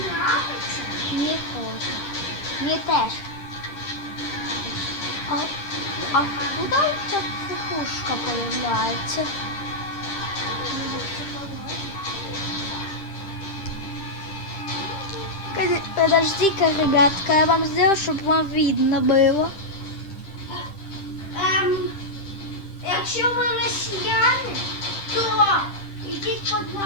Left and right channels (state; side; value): late; right; 10 ms